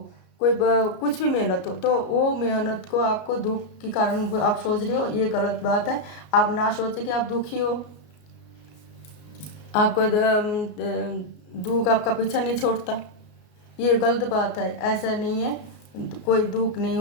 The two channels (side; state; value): right; late; 33 ms